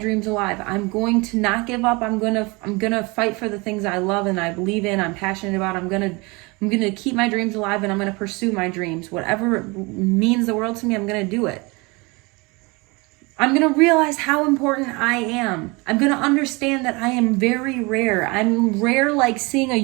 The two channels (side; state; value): left; quieter; 26.5 dB